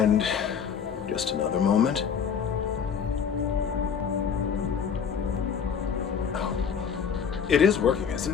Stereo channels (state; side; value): quieter; right; 7.1 dB